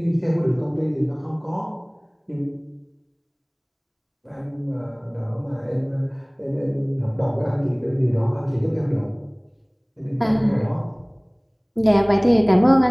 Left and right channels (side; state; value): both; identical; correlation 1.00